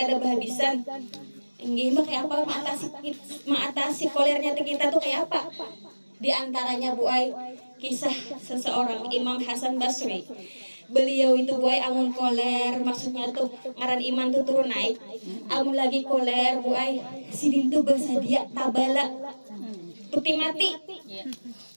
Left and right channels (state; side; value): inverted; both; correlation -1.00